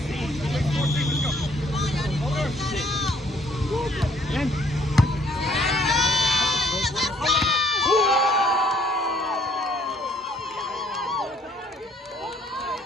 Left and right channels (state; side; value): normal; both; correlation 0.62